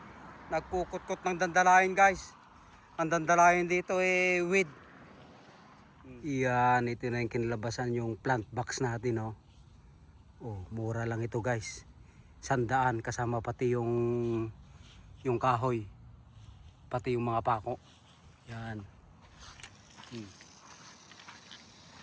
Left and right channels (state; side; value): identical; both; correlation 1.00